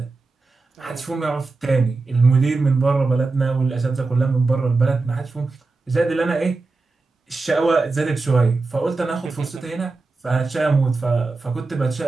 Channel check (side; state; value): left; quieter; 3.7 dB